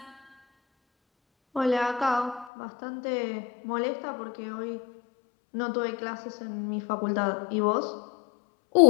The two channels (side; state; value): right; drops out; at 2.5 s